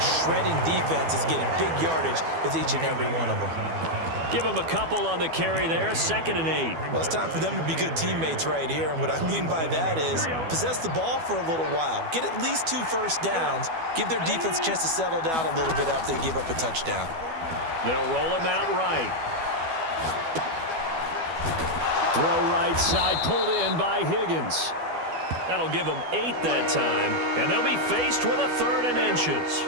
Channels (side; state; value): left; late; 12 ms